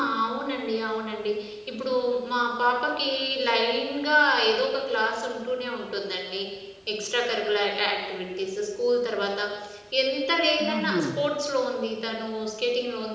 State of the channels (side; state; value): both; identical; correlation 1.00